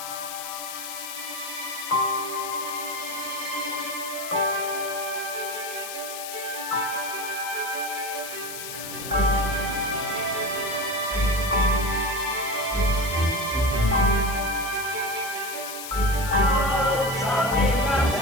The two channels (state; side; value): noise; left; hiss, 8 dB below the sound